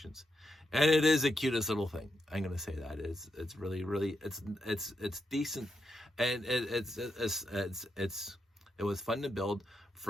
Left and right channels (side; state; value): both; normal; correlation 0.83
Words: And it is the cutest little thing. I'm going to say that. It's really, really, it's decent. And it was fun to build